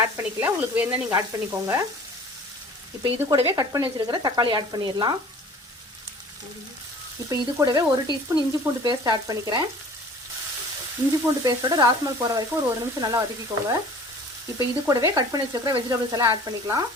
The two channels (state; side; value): normal; both; correlation 0.46